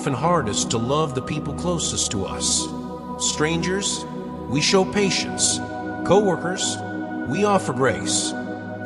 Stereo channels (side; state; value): both; identical; correlation 1.00